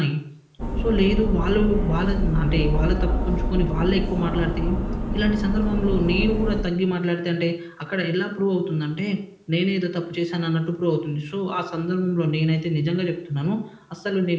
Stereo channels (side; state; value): both; identical; correlation 1.00